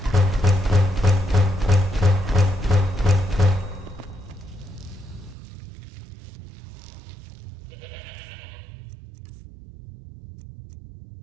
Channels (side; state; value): left; drops out; at 5.4 s